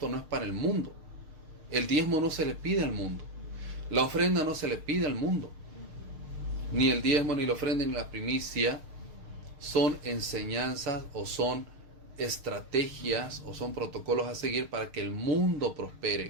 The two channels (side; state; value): left; late; 6.6 ms